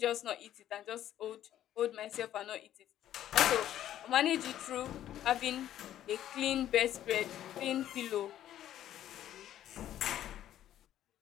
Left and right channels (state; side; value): quieter; right; 11.9 dB